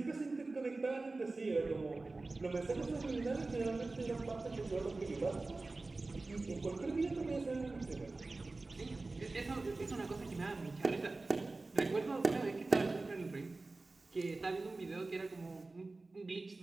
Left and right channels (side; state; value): left; quieter; 3.4 dB